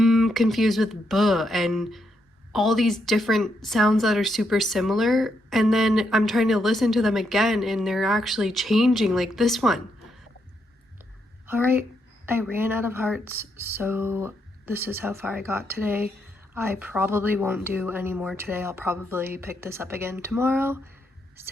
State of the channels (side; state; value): both; normal; correlation 0.79